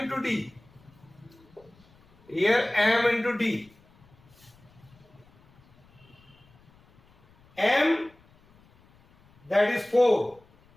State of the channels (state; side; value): noise; left; rumble, 29 dB below the sound